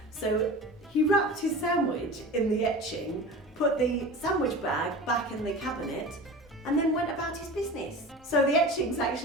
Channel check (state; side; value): normal; both; correlation 0.34